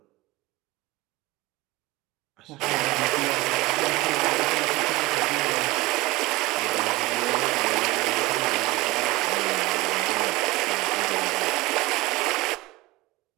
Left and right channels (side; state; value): left; quieter; 20.8 dB